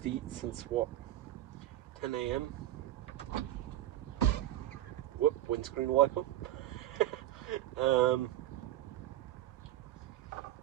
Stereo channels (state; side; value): quieter; left; 13.9 dB